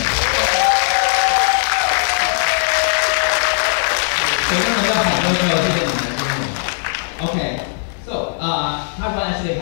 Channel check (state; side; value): silent; right; digital silence